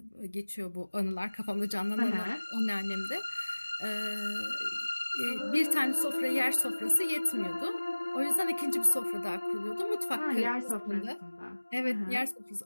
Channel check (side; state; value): both; inverted; correlation -1.00